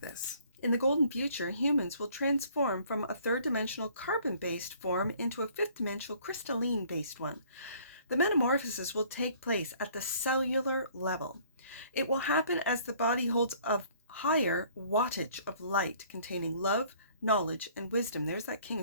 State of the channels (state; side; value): inverted; both; correlation -0.58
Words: this. In the golden future, humans will transform from a third-dimensional carbon-based form into a fifth-dimensional crystalline-based one. The metamorphosis will take place at the cellular level. It will happen as the body holds a higher wattage of light containing love, knowledge, and wisdom. There's that King